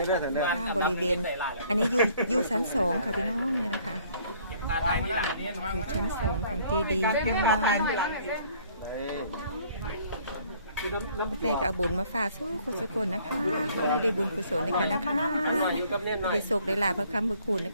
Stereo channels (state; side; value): inverted; both; correlation -0.60